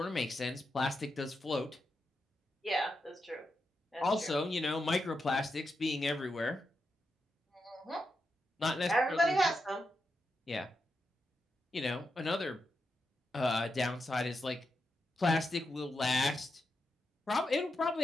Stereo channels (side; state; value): both; normal; correlation 0.86